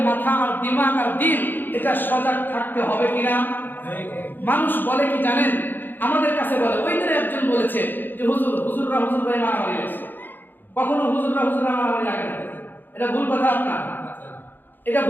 মাথা আর দিমাগ আর দিল এটা সজাগ থাকতে হবে কিনা। মানুষ বলে কি জানেন? আমাদের কাছে বলে, ওই দিনে একজন বলেছে যে হুজুররা মারামারি লাগছে। কখনো হুজুররা মারামারি লাগে না। এটা ভুল কথা আপনার, এটা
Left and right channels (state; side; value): late; right; 0.091 ms